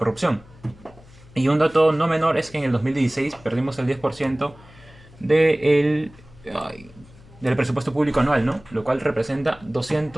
Y un dato no menor es que en el 2016 perdimos el 10% del, ay, del presupuesto público anual, ¿no? Lo cual representa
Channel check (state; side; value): noise; left; hum, 23 dB below the sound